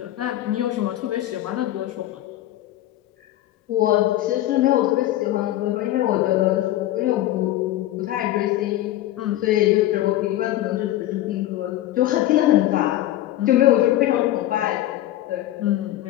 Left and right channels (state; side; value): quieter; right; 14.4 dB